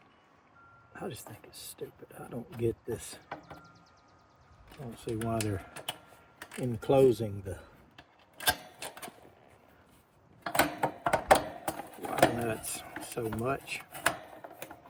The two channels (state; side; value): identical; both; correlation 1.00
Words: think is stupid. I don't get this. I don't see why they're enclosing the wire nuts so much.